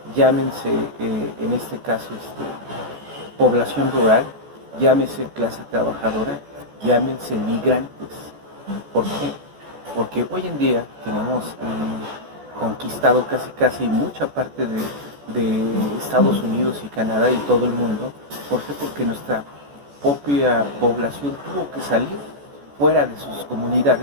llámense en este caso población rural, llámense clase trabajadora, llámense migrantes. ¿Por qué? Porque hoy en día tenemos conquistado casi mucha parte de Estados Unidos y Canadá y todo el mundo. ¿Por qué? Porque nuestra propia población tuvo que salir fuera de sus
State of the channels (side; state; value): left; late; 14 ms